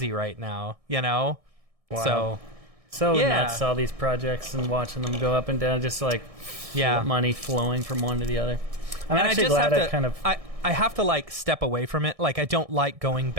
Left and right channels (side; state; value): left; late; 1.6 ms